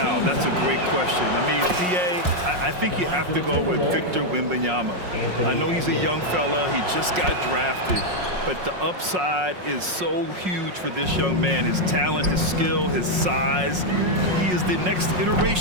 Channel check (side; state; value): left; late; 5.5 ms